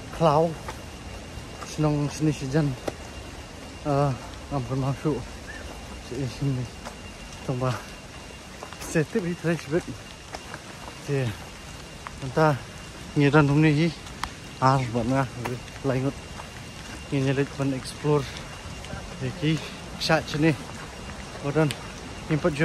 cloud. Senang sini sejan. Ampun masuk. Sini. Tunggu. Setip di trash bed. Thì chúng ta nhìn ra hôm nay vẫn nga lại ngột nhìn lịch vẫn explore thì cái sạch trên này một lần input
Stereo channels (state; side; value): identical; both; correlation 1.00